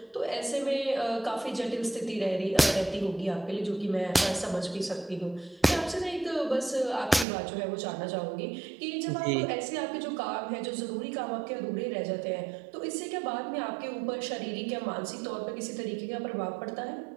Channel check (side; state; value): left; drops out; at 7.2 s